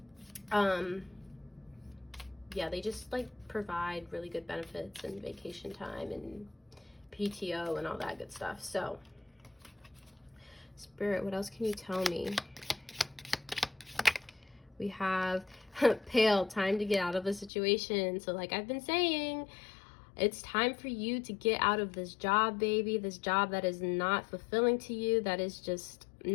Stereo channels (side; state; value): right; drops out; at 17.5 s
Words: yeah, they just like provide really good benefits and vacation time and PTO and all that good stuff. So Spirit, what else can you tell me? We have Pale, time to get out of the situation. So like I've been saying, it's time for you to get out of this job, baby. This job that is not fulfilling to you, that is just